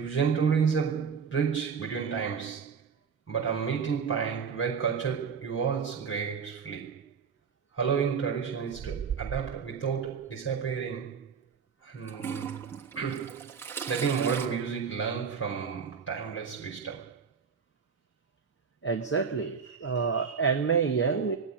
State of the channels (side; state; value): left; quieter; 6.1 dB